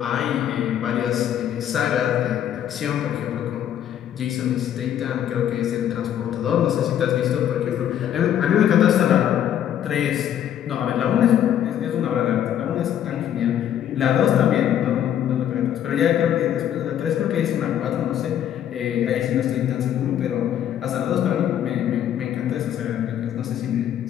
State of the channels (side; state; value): right; quieter; 10.3 dB